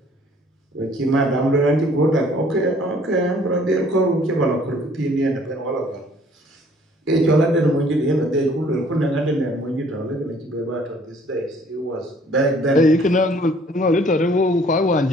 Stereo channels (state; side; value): normal; both; correlation 0.58